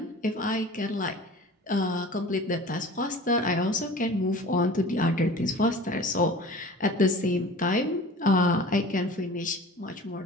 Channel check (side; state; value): both; normal; correlation 0.41